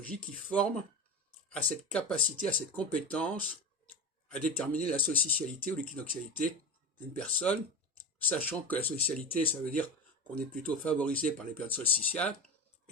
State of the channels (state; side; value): normal; both; correlation 0.25